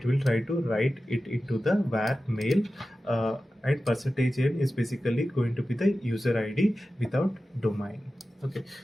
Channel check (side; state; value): both; normal; correlation 0.94